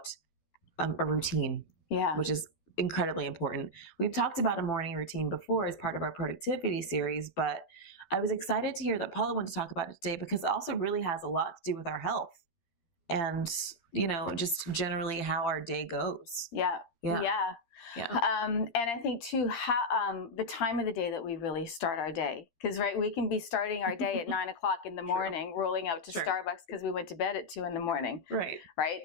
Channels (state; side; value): late; right; 12 ms